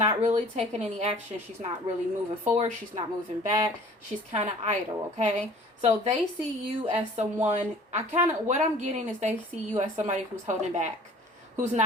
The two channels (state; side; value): normal; both; correlation 0.48